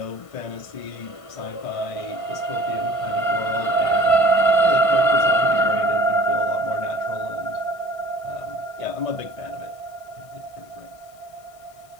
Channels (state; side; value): late; right; 1.5 ms